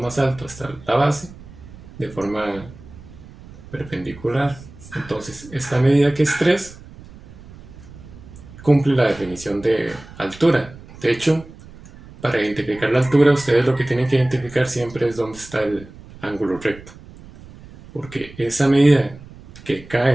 alto hasta la base de forma perpendicular. Entonces, esta medida que es 3 cumple la definición de altura. De hecho, para identificar la altura, ustedes lo que tienen que identificar siempre es dónde está el ángulo recto. Porque esa medida que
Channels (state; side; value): noise; right; rumble, 19 dB below the sound